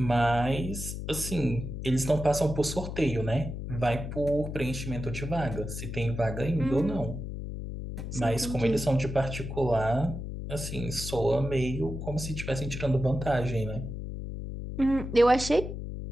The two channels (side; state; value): left; noise; hum, 6 dB below the sound